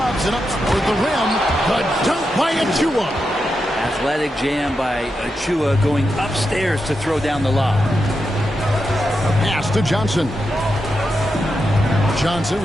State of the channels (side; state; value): both; normal; correlation 0.87